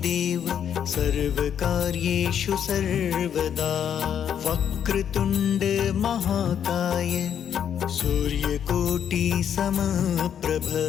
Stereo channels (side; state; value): right; quieter; 8.8 dB